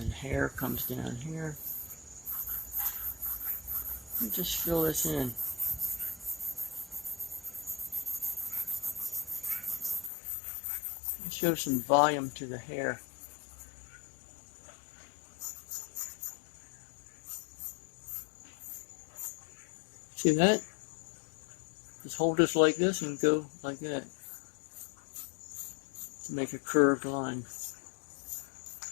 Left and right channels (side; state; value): right; drops out; at 10.1 s